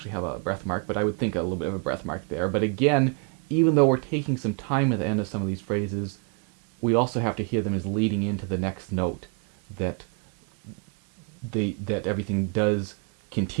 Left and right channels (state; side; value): quieter; left; 35.8 dB